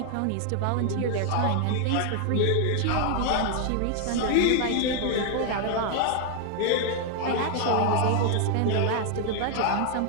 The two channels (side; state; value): both; different; correlation 0.00